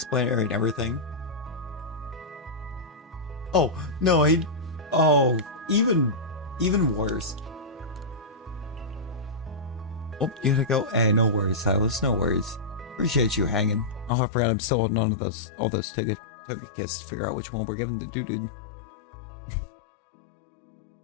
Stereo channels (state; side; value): drops out; right; at 14.1 s